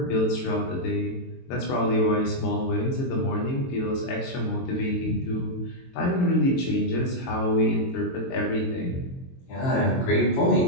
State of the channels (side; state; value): right; late; 22 ms